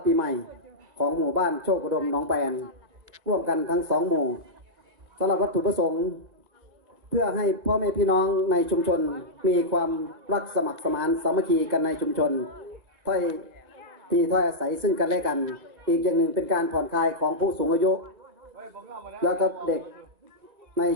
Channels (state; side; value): late; left; 1.8 ms